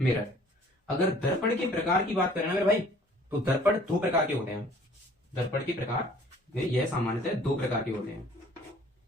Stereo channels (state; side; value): normal; both; correlation 0.54